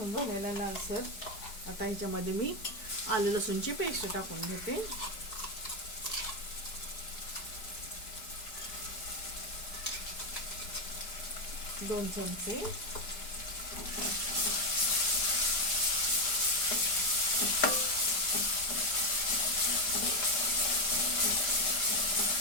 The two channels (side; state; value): right; late; 5.0 ms